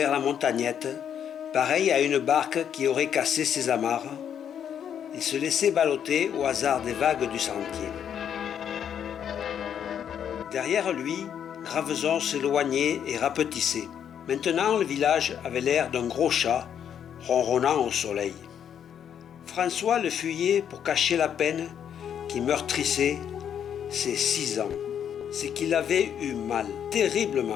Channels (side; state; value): right; quieter; 8.8 dB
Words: la montagnette, pareil à une barque qui aurait cassé ses amarres. Il se laissait balloter au hasard des vagues du sentier. Derrière lui, Graveson s'éloignait et rapetissait. Maintenant, le village avait l'air d'un gros chat, ronronnant au soleil. François le fuyait pour cacher la peine qui meurtrissait ses 6 ans. C'est qu'il avait eu mal,